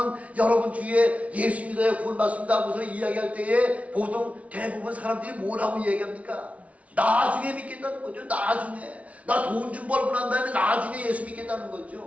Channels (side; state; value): left; late; 0.066 ms